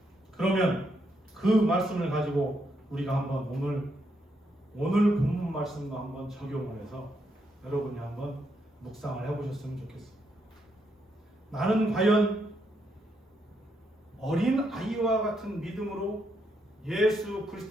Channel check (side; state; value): both; normal; correlation 0.78